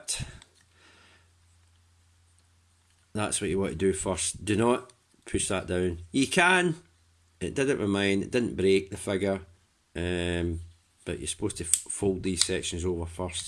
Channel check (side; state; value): both; identical; correlation 1.00